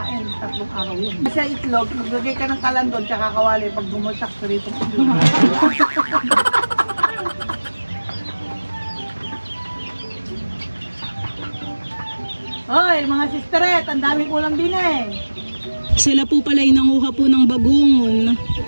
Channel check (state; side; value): inverted; both; correlation -1.00